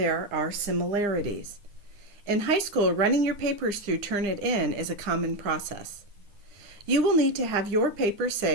are similarities. In high school, running your papers through Turnitin is a common process. You will need to have your paper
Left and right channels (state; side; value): late; left; 9.8 ms